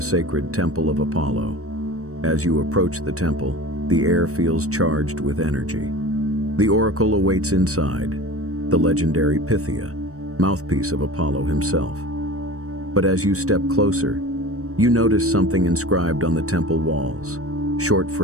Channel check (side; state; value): left; late; 0.65 ms